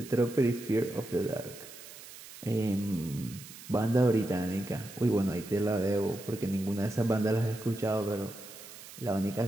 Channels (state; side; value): noise; right; hiss, 16 dB below the sound